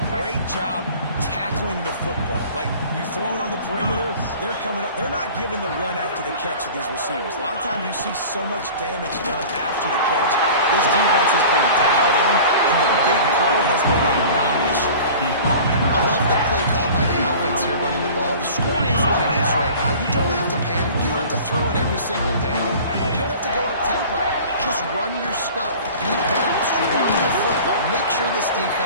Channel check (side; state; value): both; inverted; correlation -0.42